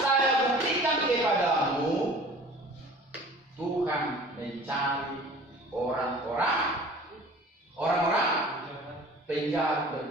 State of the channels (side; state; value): both; normal; correlation 0.45